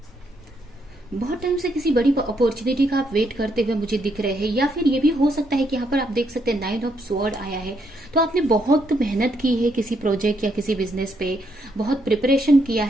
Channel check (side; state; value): both; normal; correlation 0.75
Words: बहुत टाइम से किसी बड़ी अपॉर्चुनिटी का आप वेट करते हुए मुझे दिख रहे हैं। या फिर ये भी हो सकता है कि यहाँ पर आप देख सकते हैं नाइन ऑफ स्वॉर्ड आया है, तो आपने बहुत मेहनत की है किसी प्रोजेक्ट या किसी बिजनेस पे, बहुत प्रिपरेशन किया